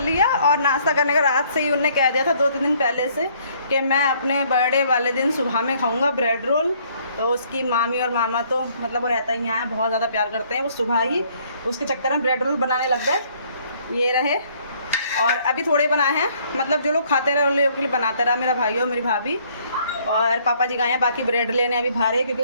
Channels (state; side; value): inverted; both; correlation -0.63